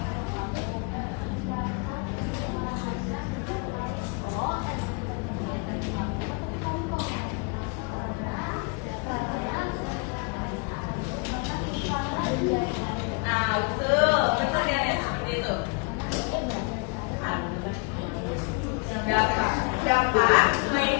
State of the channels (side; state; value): right; quieter; 33.3 dB